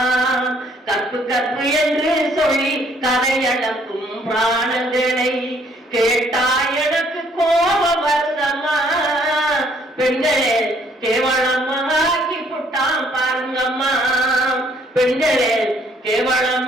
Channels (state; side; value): normal; both; correlation 0.64